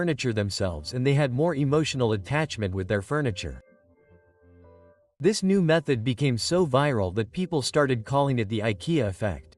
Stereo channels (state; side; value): identical; both; correlation 1.00